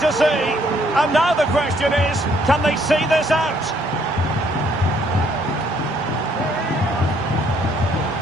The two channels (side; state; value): both; normal; correlation 0.66